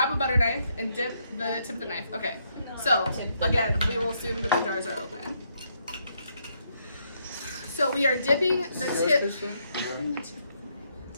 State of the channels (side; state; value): both; inverted; correlation -0.75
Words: a butter knife and dip the tip of the knife. Okay, so again, we will assume that the jars are open. So we are dipping the tip. The tip.